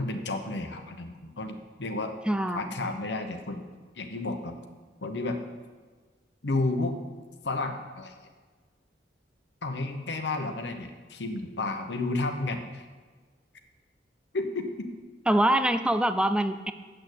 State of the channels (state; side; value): normal; both; correlation 0.63